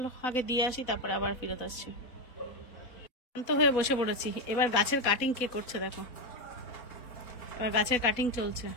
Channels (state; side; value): late; right; 4.1 ms